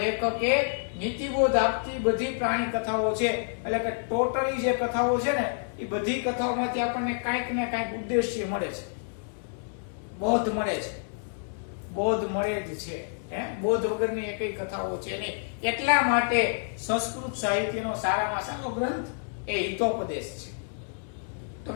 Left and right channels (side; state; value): right; silent; 59 dB below the other